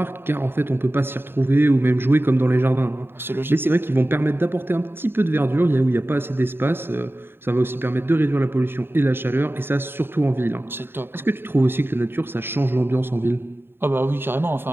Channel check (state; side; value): late; left; 0.11 ms